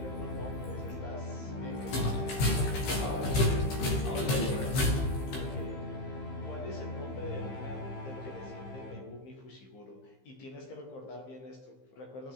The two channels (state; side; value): late; right; 15 ms